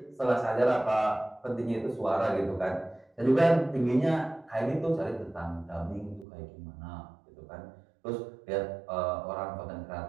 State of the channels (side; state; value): left; drops out; at 6.2 s